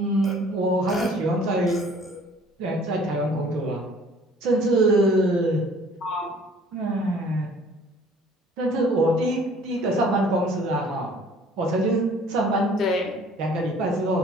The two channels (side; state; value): both; normal; correlation 0.53